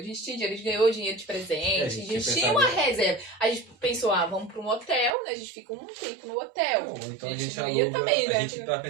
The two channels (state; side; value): drops out; left; at 5.1 s